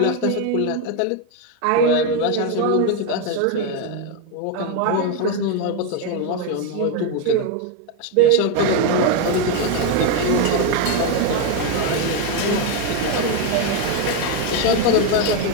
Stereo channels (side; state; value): both; different; correlation 0.02